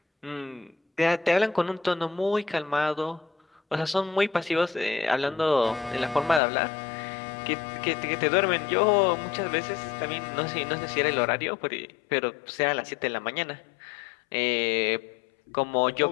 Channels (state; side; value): drops out; right; at 6.4 s